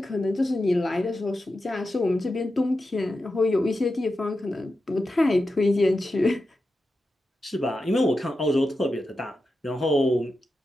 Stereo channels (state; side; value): normal; both; correlation 0.90